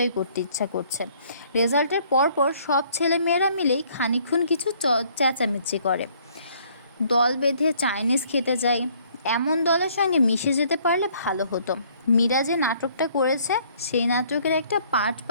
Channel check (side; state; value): both; inverted; correlation -0.61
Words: করতে ইচ্ছা করছে। রেজাল্টের পরপর সব ছেলে মেয়েরা মিলেই খানিকক্ষণ কিছু চেঁচামেচি করে। দল বেঁধে চাইনিজ খেতে যায়। এমন দলের সঙ্গে মিশে যেতে পারলে ভালো হতো। মীরা যে নাটকটা করেছে সেই নাটকের একটা পার্ট